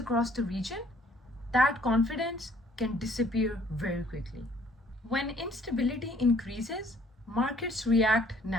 the region, that confidence can disappear very quickly. When instability increases, markets react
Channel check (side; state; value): both; normal; correlation 0.60